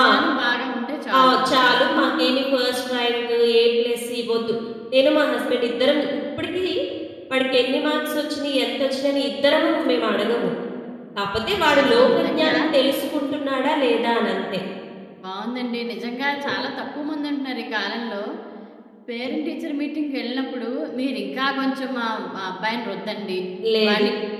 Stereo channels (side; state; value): both; identical; correlation 1.00